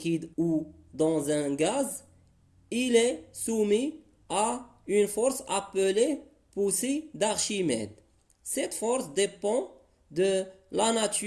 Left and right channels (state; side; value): identical; both; correlation 1.00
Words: ou dans un gaz, il est soumis à une force appelée poussée d'Archimède. Cette force dépend de la